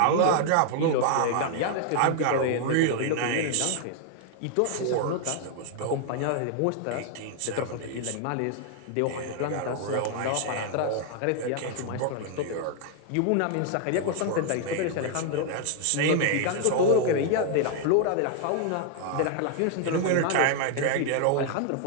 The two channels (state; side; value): different; both; correlation 0.00